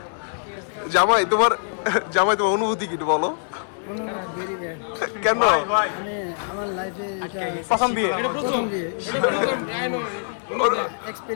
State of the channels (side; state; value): right; silent; digital silence